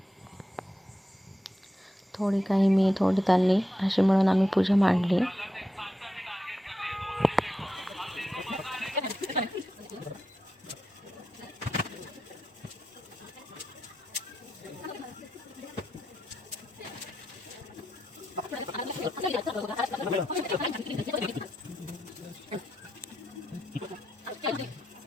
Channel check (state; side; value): normal; both; correlation 0.86